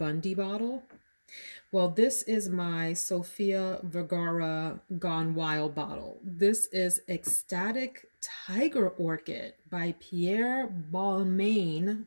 bottle. Well, this is my Sofia Vergara Gone Wild bottle. This is Extatic Tiger Orchid by Pierre Balmain. I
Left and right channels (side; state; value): both; inverted; correlation -1.00